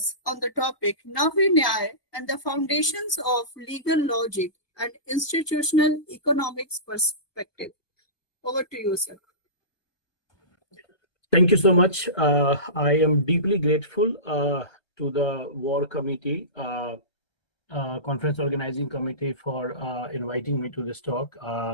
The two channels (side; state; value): right; late; 1.2 ms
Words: on the topic Navya-Nyaya and the foundations of legal logic and institutional economics perspective. Over to you, sir. Thank you so much. I am deeply grateful to the WAAR committee, conference organizing committee, for inviting me to this talk.